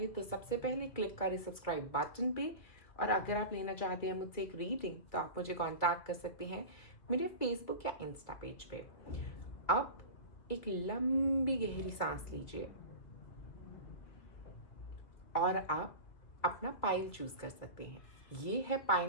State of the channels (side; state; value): right; late; 2.6 ms